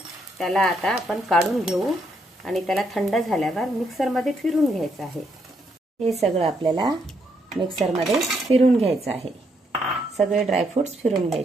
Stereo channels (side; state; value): both; normal; correlation 0.75